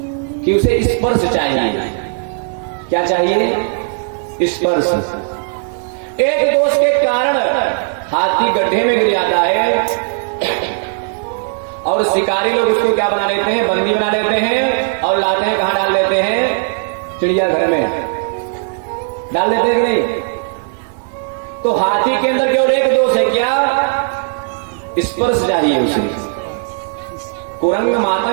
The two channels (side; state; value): left; silent; 69 dB below the other